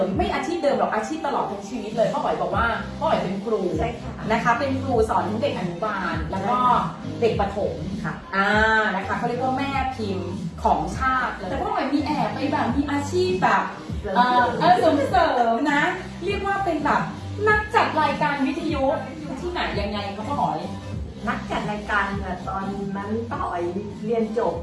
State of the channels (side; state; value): both; identical; correlation 1.00